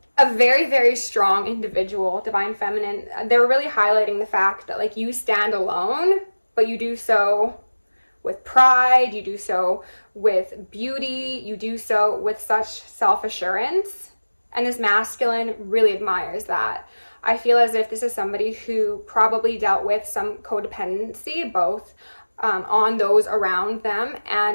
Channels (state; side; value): inverted; both; correlation -1.00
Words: a very, very strong individual, Divine Feminine. They're really highlighting the fact that like you stand alone, but you do so with pride, you do so with beauty, you do so with such self-assurance. And this masculine really admires that. I feel as if this is somebody who probably dealt with some codependency, both on those around them